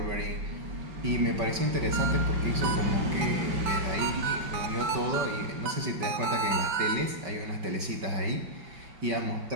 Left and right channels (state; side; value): late; left; 5.3 ms